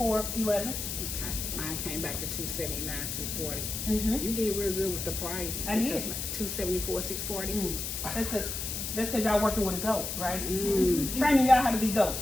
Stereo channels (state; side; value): noise; left; hiss, 4 dB below the sound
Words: 11. Okay, mine came back to 279, 240. Mm-hmm. You did real good with the price. I did. 274, 640. That's because y'all working with a goat, right? Mm. Training y'all how to be goats.